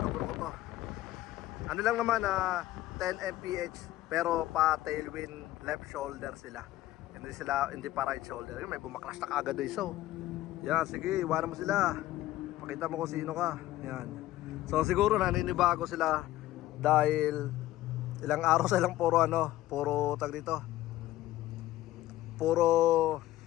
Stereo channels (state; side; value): quieter; right; 15.4 dB